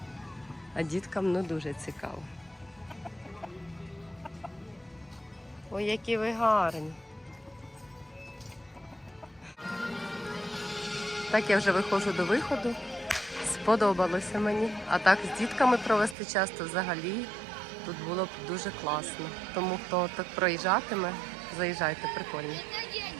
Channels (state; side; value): drops out; left; at 16.2 s